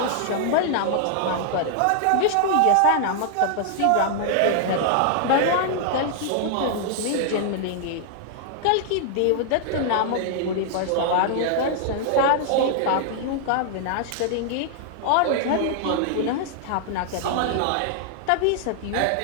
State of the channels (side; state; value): both; different; correlation -0.01